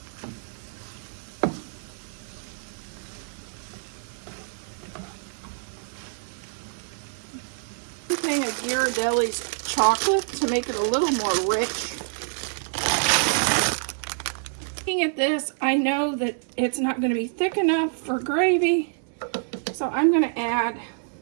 Of Ghirardelli's chocolate to make it a little more rich. Looking at this, I know that it's not going to be thick enough for gravy, so I'm going to add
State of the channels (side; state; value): left; silent; 61 dB below the other